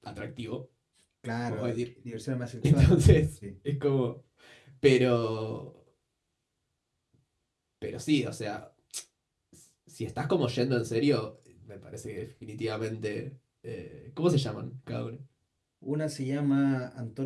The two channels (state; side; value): identical; both; correlation 1.00